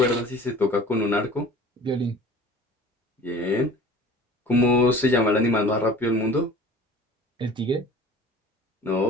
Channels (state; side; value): normal; both; correlation 0.45